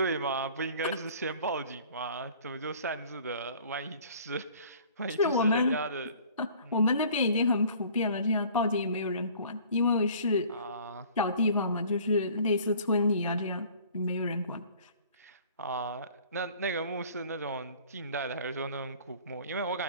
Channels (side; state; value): both; inverted; correlation -0.50